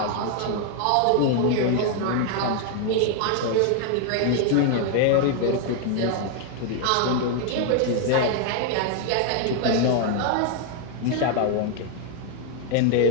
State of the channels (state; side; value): different; both; correlation 0.00